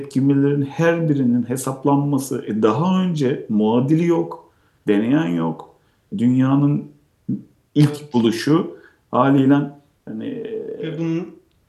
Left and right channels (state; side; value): identical; both; correlation 1.00